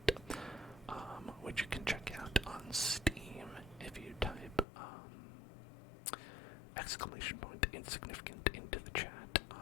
which you can check out on Steam if you type exclamation point insignificant into the chat.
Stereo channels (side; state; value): right; drops out; at 4.7 s